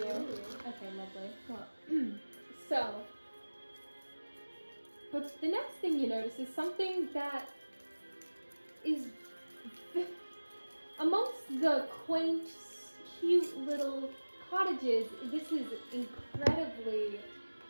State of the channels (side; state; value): both; inverted; correlation -1.00